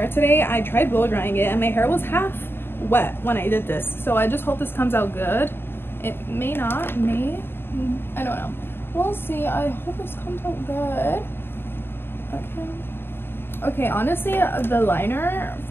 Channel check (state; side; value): late; right; 0.11 ms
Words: today. I tried blow drying it and my hair was half wet when I did this. So I just hope this comes out good. It may not, I don't know. We'll see. I hope this comes out good. Okay, honestly, the liner